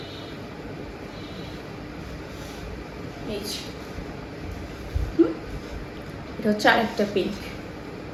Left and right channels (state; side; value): identical; both; correlation 1.00